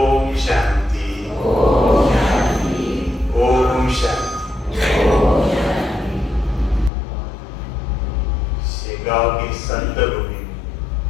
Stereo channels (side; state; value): right; drops out; at 6.9 s